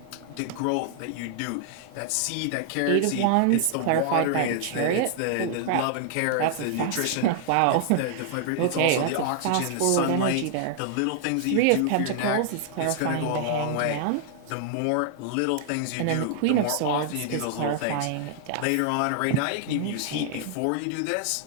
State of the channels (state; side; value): different; both; correlation 0.00